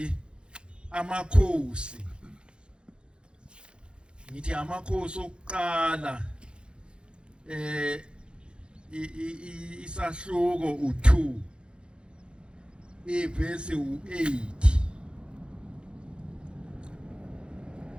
amakhosi. Ngithi amakhosi okuqala isahluko u2 ivesi u8.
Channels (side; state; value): left; late; 0.054 ms